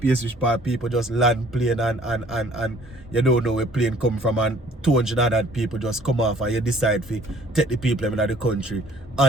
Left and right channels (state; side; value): normal; both; correlation 0.56